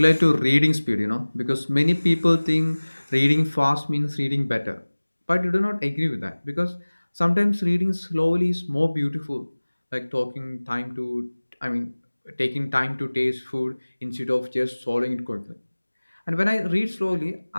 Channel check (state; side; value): inverted; both; correlation -1.00